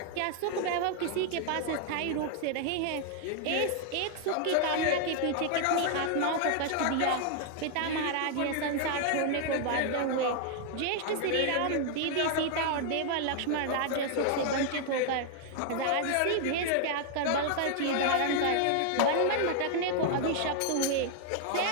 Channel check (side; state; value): both; different; correlation 0.00